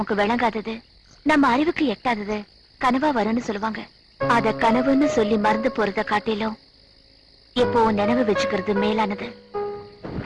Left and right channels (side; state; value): both; identical; correlation 1.00